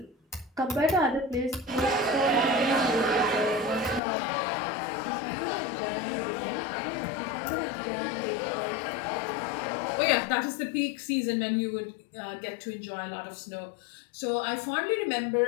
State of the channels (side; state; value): right; drops out; at 4.0 s